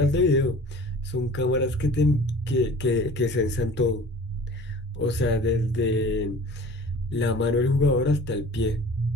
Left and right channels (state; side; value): normal; both; correlation 0.44